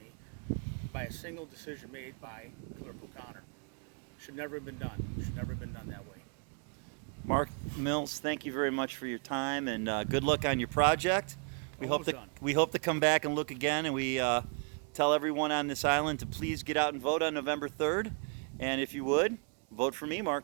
by a single decision made by Clerk O'Connor. Should never have been done. Should never have been done that way. Mark Mills, thank you very much for your time, and good luck on your project. We hope to come back and look again, and we tell everyone on this island to please get out and vote on November 3rd. And if you would, vote for me,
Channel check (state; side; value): quieter; left; 38.3 dB